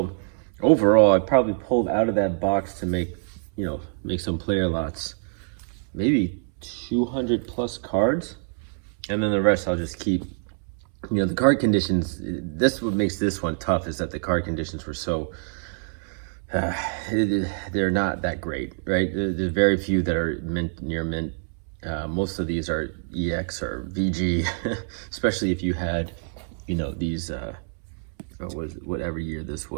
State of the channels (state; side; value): silent; left; 61 dB below the other